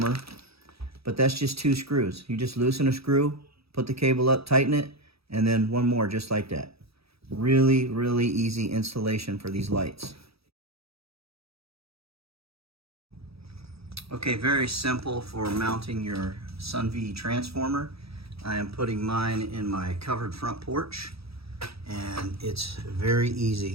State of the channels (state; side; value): late; left; 0.77 ms